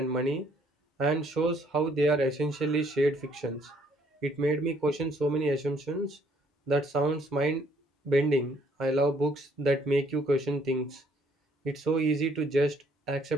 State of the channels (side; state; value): both; normal; correlation 0.64